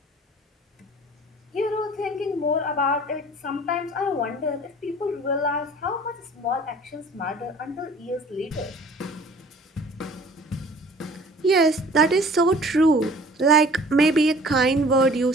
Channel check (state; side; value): normal; both; correlation 0.49